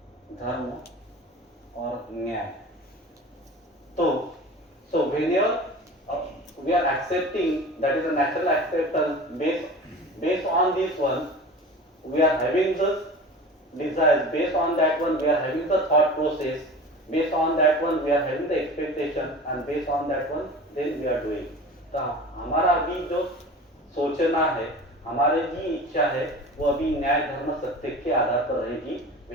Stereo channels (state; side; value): normal; both; correlation 0.37